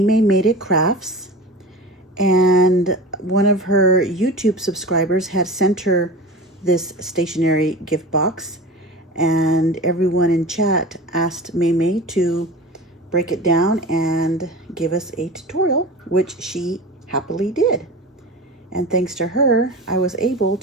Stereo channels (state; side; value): normal; both; correlation 0.33